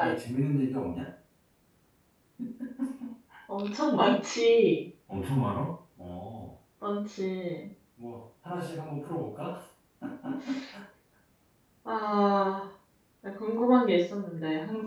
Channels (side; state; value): both; identical; correlation 1.00